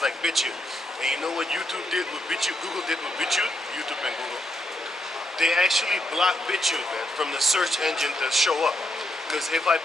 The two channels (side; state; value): both; normal; correlation 0.78